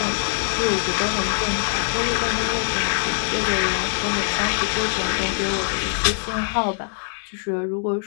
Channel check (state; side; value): silent; right; digital silence